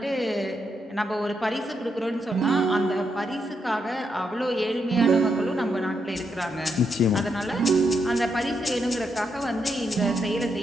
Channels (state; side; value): normal; both; correlation 0.81